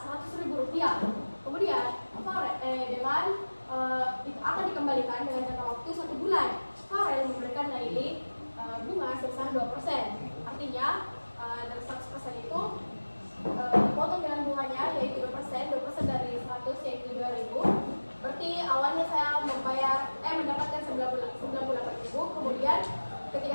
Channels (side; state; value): both; inverted; correlation -1.00